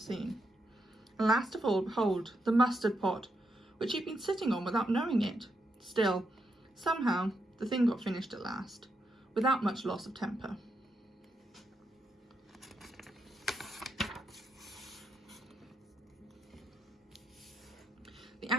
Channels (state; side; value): normal; both; correlation 0.82